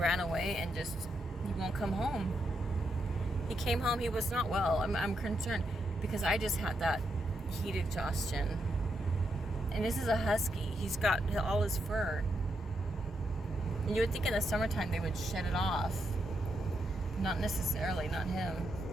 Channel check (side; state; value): both; normal; correlation 0.81